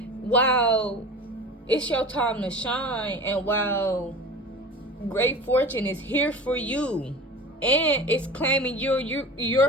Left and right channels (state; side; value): normal; both; correlation 0.36